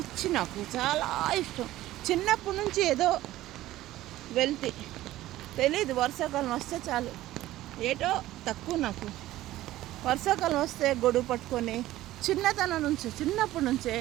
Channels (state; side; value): quieter; left; 15.4 dB